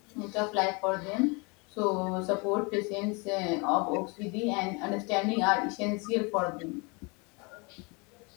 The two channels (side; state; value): right; quieter; 30.0 dB